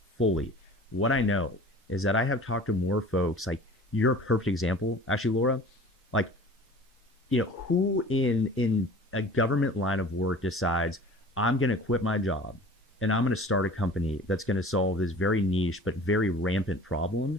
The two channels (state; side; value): normal; both; correlation 0.43